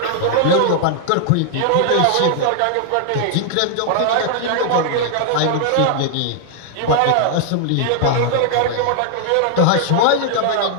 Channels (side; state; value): both; different; correlation 0.00